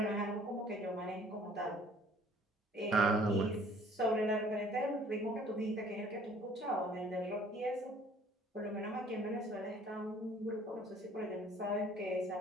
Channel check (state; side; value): normal; both; correlation 0.55